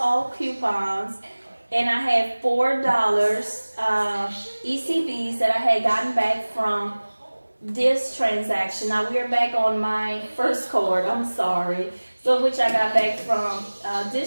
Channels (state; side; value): inverted; both; correlation -1.00